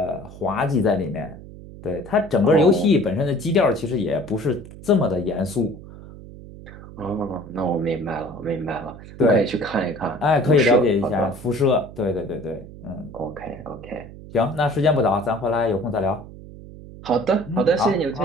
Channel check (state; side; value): noise; right; hum, 16 dB below the sound